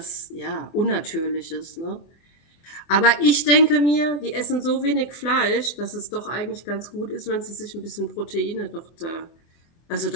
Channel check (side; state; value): right; late; 24 ms